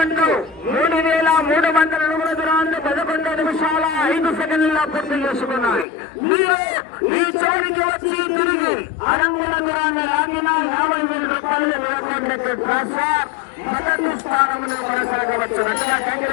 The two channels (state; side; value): drops out; right; at 5.9 s